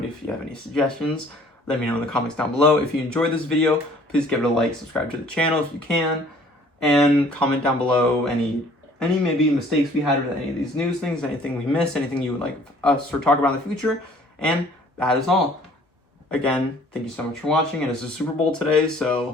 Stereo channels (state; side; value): normal; both; correlation 0.55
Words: if you have any suggestions, let me know in the comments down below. If you enjoyed this video, please give it a like, subscribe to the channel if you can, and comment down below any maybe mistakes we had with any of these news things, anything we missed, anything you would like us to talk about in the future. And that is all. Again, thank you so much for watching. And it's the Super Bowl today,